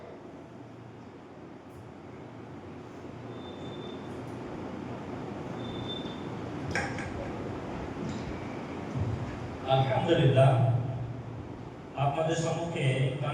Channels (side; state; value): both; identical; correlation 1.00